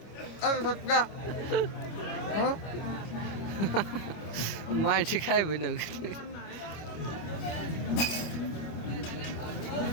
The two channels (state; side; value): late; right; 25 ms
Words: अरे सच्चा हाँ মাছ খাইবে না